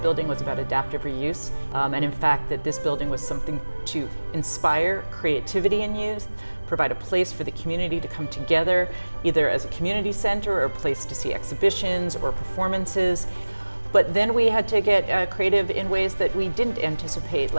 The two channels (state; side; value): inverted; both; correlation -1.00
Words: was about adaptive reuse, and in fact that this building was something to inspire creativity in youth, provide a place for the community to come together, either as a community center or a place to see exhibitions or performances. But then we had to get creative in ways that we didn't anticipate,